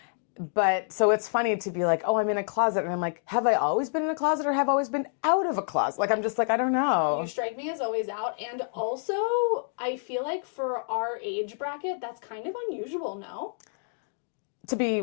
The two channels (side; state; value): right; silent; digital silence